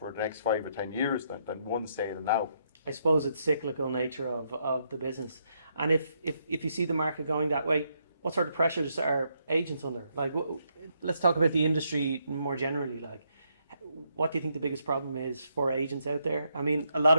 the next 5 or 10 years than one sale now. I suppose it's cyclical nature of the business. And if you see the market going that way, what sort of pressures are agents under? Like, let's talk about the industry more generally. Like, what do you think the biggest problem is for agents out there? I mean, a lot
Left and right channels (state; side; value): inverted; both; correlation -0.76